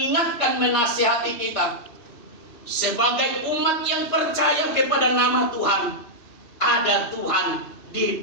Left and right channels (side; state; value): right; late; 2.7 ms